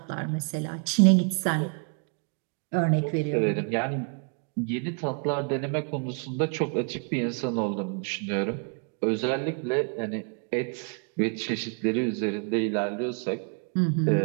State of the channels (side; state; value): left; quieter; 37.8 dB